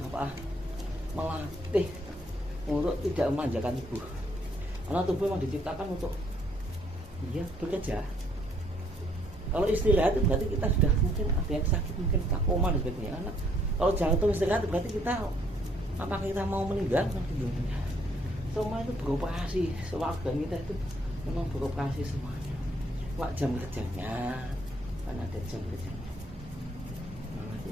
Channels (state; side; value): normal; both; correlation 0.67